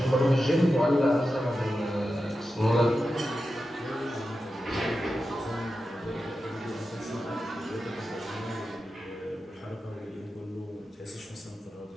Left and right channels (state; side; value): normal; both; correlation 0.91